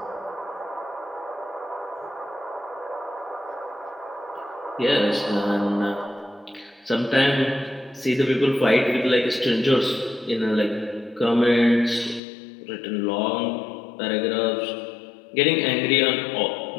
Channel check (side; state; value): right; drops out; at 12.2 s